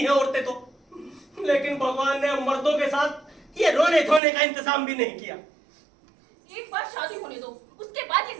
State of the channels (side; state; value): left; drops out; at 4.2 s